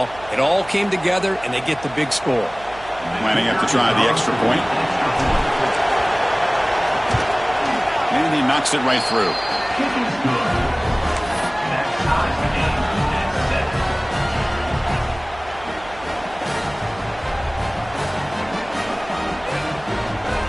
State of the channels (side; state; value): right; noise; hum, 20 dB below the sound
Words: It all came together, and they get the big score. Lining up to try the extra point. And he knocks it right through.